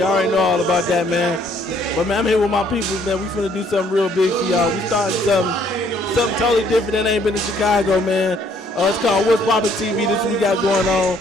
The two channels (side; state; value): both; normal; correlation 0.64